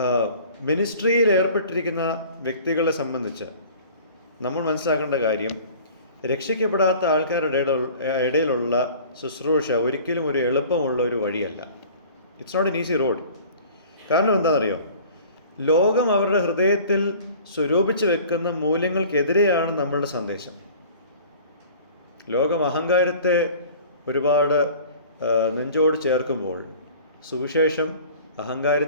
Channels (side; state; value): both; inverted; correlation -0.46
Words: മിനിസ്ട്രിയിൽ ഏർപ്പെട്ടിരിക്കുന്ന വ്യക്തികളെ സംബന്ധിച്ച് നമ്മൾ മനസ്സിലാക്കേണ്ട കാര്യം, രക്ഷിക്കപ്പെടാത്ത ആൾക്കാരുടെ ഇടയിലുള്ള ശുശ്രൂഷ ഒരിക്കലും ഒരു എളുപ്പമുള്ള ഒരു വഴിയല്ല. It's not an easy road. കാരണം എന്താണെന്നറിയോ? ലോകം അവരുടെ ഹൃദയത്തിൽ സ്വരൂപിച്ച് വെക്കുന്ന മൂല്യങ്ങൾക്കെതിരെയാണ് നമ്മളുടെ സന്ദേശം. ലോകം അഹങ്കാരത്തെ ഒരുപാട് നെഞ്ചോട് ചേർക്കുമ്പോൾ സുവിശേഷം